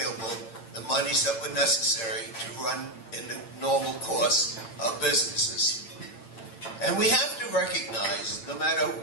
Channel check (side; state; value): right; late; 8.8 ms